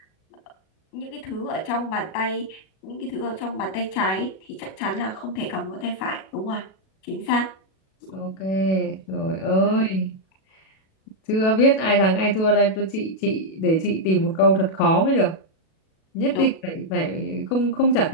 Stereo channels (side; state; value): right; late; 37 ms